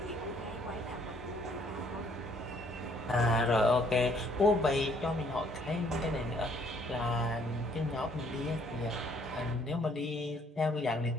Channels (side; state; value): both; normal; correlation 0.64